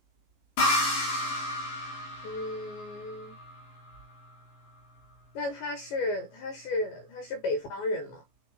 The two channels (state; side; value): late; right; 14 ms